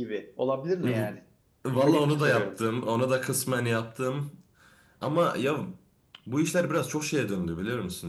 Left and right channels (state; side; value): identical; both; correlation 1.00